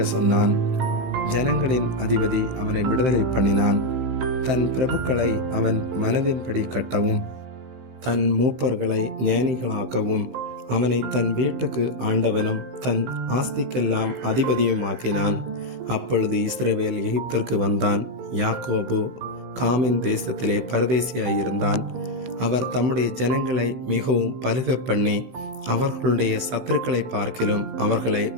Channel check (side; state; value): left; late; 15 ms